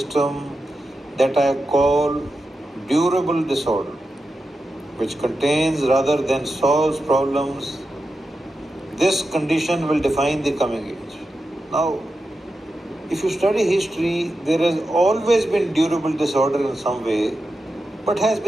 that I call durable disorder, which contains rather than solves problems. This condition will define the coming age. Now, if you study history, there has always been durable disorder in some way, but has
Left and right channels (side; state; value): both; normal; correlation 0.90